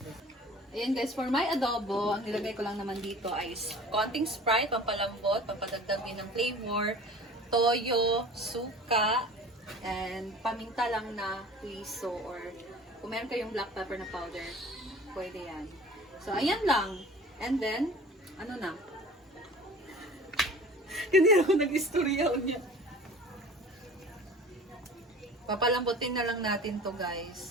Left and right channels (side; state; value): both; normal; correlation 0.43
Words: Ayan guys, for my adobo, ang nilagay ko lang naman dito ay konting Sprite, pampalambot, pampadagdag din ng flavor, toyo, suka, And paminta lang na huiso or kung meron kayong black pepper na powder, pwede yan. So, ayan lang. And then, ano na? Ganyan ako nag-istorya niya. Papalambutin na lang natin to,